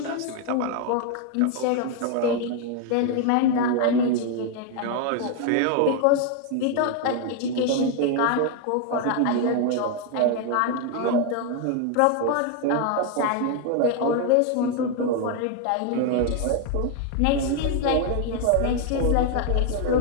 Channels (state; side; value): different; both; correlation 0.01